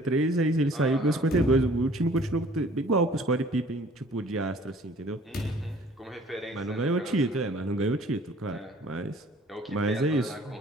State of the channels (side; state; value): both; normal; correlation 0.53